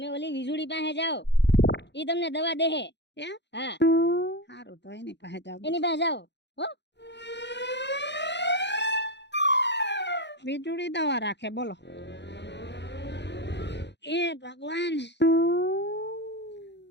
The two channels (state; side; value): late; right; 0.51 ms